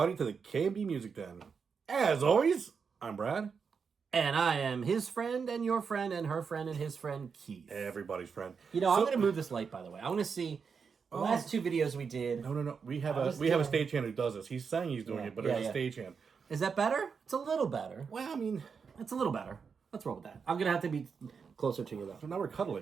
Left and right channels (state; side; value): quieter; left; 5.9 dB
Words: to the K&B Music Den. As always, I'm Brad. And I am his friend and your friend and her friend and his friend, Keith. Everybody's friend. You know, I'm going to move this light, by the way. I want to see the last two videos we did. No. We have a stagehand who does this. He's saying he's doing it, but there's a stagehand. Is that better? It's a little better. Well, I mean... It's a little better. Let's roll with that. I'm going to have to be closer to you, though. So now we're